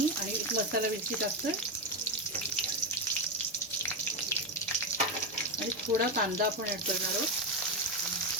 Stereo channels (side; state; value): both; normal; correlation 0.10